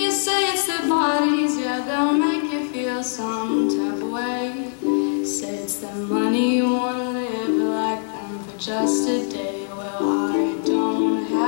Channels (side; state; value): right; silent; 64 dB below the other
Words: say it's their bodies, yeah, they'll make you feel some type of way. Say it's their money, you wanna live like them for just a day. Well, I don't